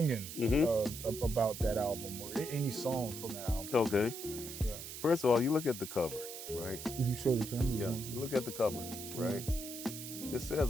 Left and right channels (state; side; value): noise; right; hiss, 9 dB below the sound